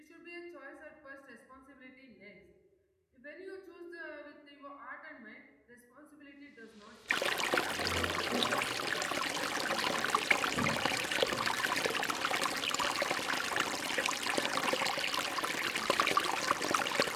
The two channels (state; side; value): identical; both; correlation 1.00